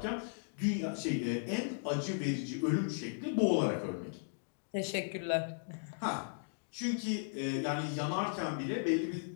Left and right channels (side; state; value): right; silent; digital silence